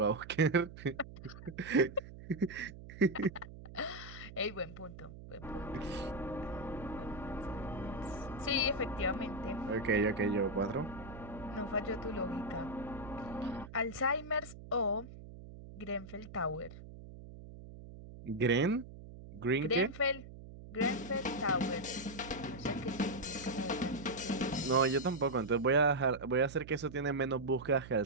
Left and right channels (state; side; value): noise; right; hum, 14 dB below the sound